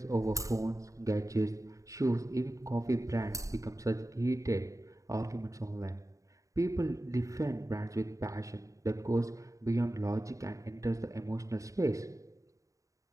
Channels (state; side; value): late; left; 0.16 ms